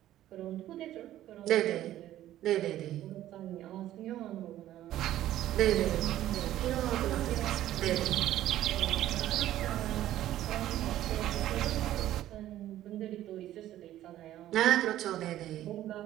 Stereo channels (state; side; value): quieter; left; 13.3 dB